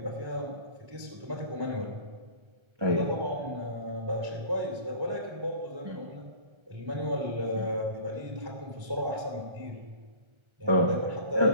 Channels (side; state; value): left; late; 1.3 ms